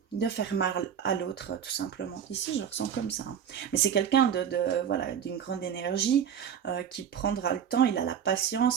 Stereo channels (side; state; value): left; quieter; 8.3 dB